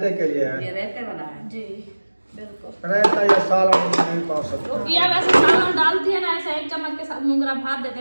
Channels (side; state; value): both; inverted; correlation -1.00